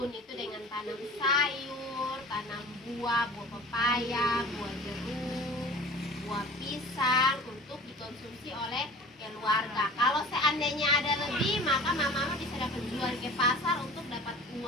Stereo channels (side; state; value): both; normal; correlation 0.42